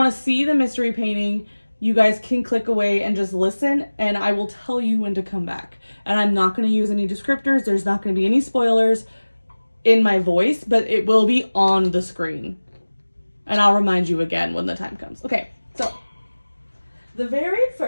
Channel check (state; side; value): inverted; both; correlation -1.00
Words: to see the mystery painting, you guys can click away and just listen, and I will tell you when to come back. And I'm not going to use any descriptors. There's not going to be any spoilers in my voice, but it will be on the screen. And I'll remind you again when the time comes. Okay, so the very